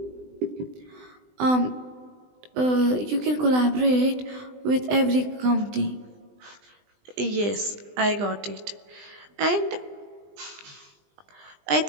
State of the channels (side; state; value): left; late; 20 ms